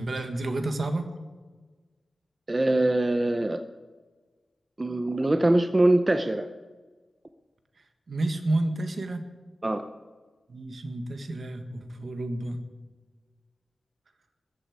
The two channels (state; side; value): normal; both; correlation 0.98